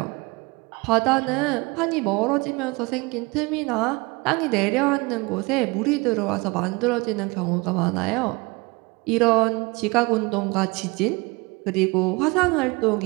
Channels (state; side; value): quieter; left; 25.6 dB